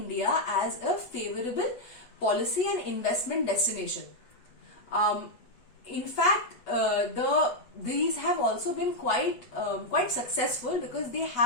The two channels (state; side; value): late; right; 8.2 ms